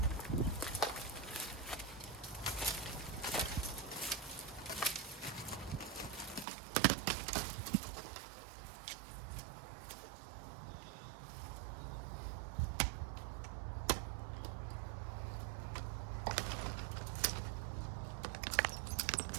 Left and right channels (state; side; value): drops out; left; at 6.5 s